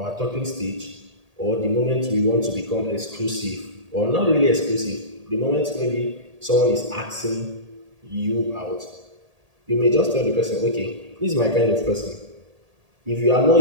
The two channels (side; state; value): left; late; 1.8 ms